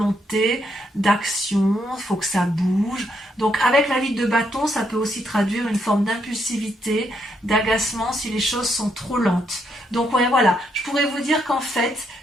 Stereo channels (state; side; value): normal; both; correlation 0.76